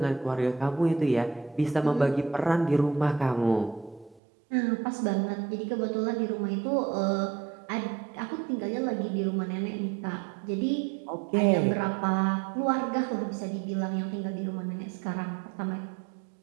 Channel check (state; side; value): drops out; left; at 4.2 s